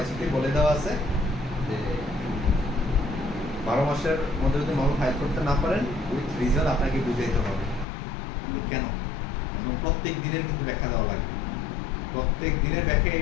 বলে দেওয়া আছে যে 12 মাসের মধ্যে যদি মামলা ফাইল করতে না পারেন, উইথ রিজন আপনাকে বুঝাইতে হবে কিন্তু কেন, এবং প্রত্যেক দিনের কিন্তু ব্যাখ্যা দেওয়া লাগবে। প্রত্যেক দিনের ব্যাখ্যা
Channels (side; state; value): right; drops out; at 7.9 s